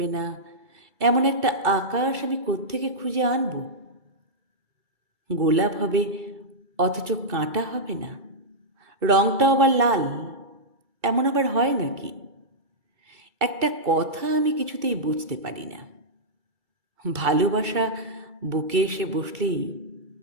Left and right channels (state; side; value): late; left; 2.3 ms